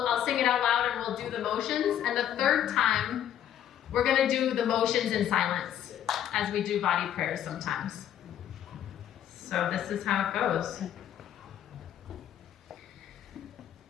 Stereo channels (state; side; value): quieter; right; 10.5 dB